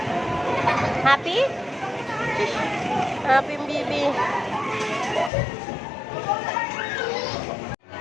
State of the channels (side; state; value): right; drops out; at 5.3 s